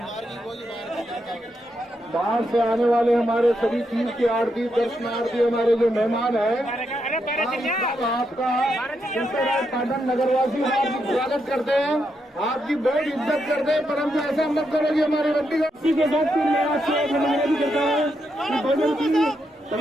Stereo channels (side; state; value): both; normal; correlation 0.82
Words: बाहर से आने वाले हमारे सभी तीर्थ के आरती दर्शनार्थी हमारे जो मेहमान हैं, आपका पाटन नगरवासी आपका स्वागत करते हैं, आपकी बहुत इज्जत करते हैं। परंतु ऐसा मत करो कि हमारी बंदी इसी के साथ मैं आपसे निवेदन भी करता हूँ कि भोजन की